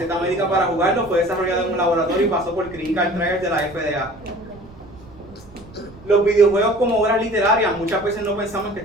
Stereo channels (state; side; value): noise; right; rumble, 21 dB below the sound